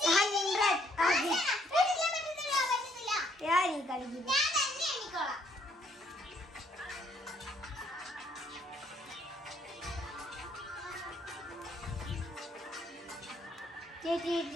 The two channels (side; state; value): both; normal; correlation 0.68